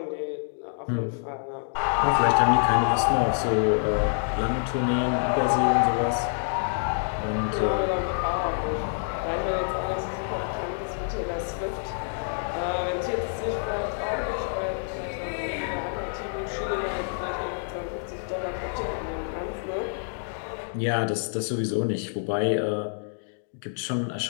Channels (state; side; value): silent; right; digital silence